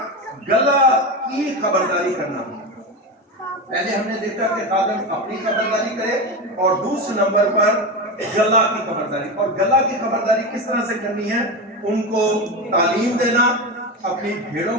गला की खबरदारी करना। पहले हमने देखा कि खादम अपनी खबरदारी करे और दूसरे नंबर पर गला की खबरदारी। और गला की खबरदारी किस तरह से करनी है? उनको तालीम देना, अपनी भेड़ों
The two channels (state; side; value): normal; both; correlation 0.19